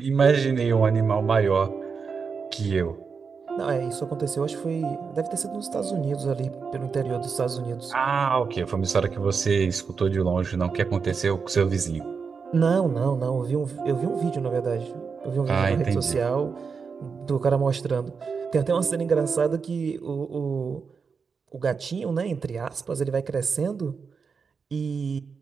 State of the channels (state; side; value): quieter; left; 5.5 dB